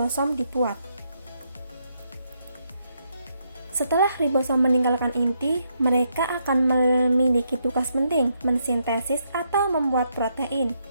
dibuat. Setelah ribosom meninggalkan inti, mereka akan memiliki tugas penting mensintesis atau membuat protein.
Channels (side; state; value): both; inverted; correlation -0.77